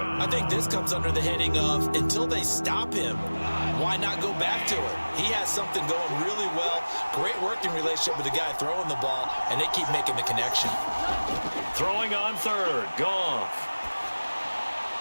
I think this comes under the heading of until they stop him, why not go back to it? He has something going really well. Great working relationship with the guy throwing the ball, and they keep making the connection. Throwing on third. Goff.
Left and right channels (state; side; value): inverted; both; correlation -1.00